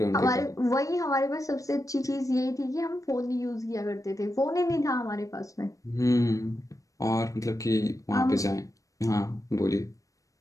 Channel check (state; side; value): late; right; 0.16 ms